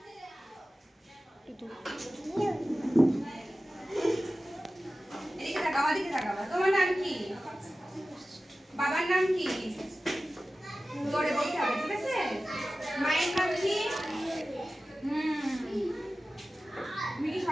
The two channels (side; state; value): both; normal; correlation 0.95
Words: এদিকে তাকাও, এদিকে তাকাও। তোমার নাম কি? বাবার নাম কি? জোরে বলতে হবে, ঠিক আছে? মায়ের নাম কি? তুমি কি